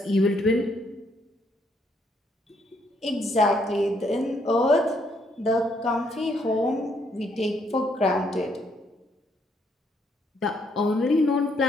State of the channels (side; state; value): both; normal; correlation 0.71